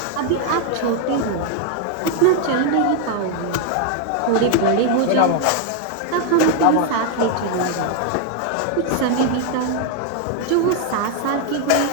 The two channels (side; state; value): both; different; correlation 0.00